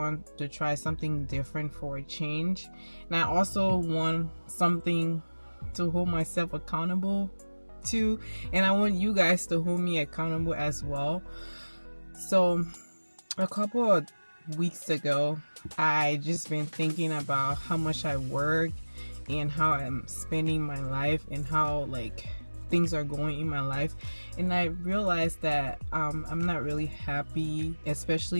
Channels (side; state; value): both; inverted; correlation -1.00